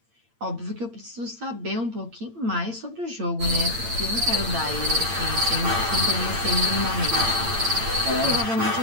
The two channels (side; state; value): left; late; 8.7 ms